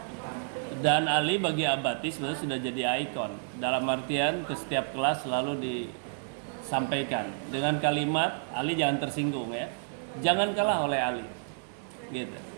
Dan Ali bagi Abati sebenarnya sudah jadi ikon. Dalam artian ke setiap kelas selalu disampaikan dengan kalimat Ali jangan tersinggung ya, jangan kalah oleh Ali, gitu.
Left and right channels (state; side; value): silent; left; 58 dB below the other